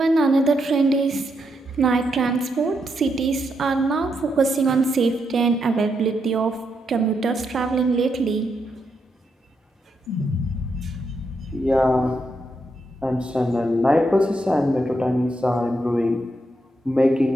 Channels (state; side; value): normal; both; correlation 0.81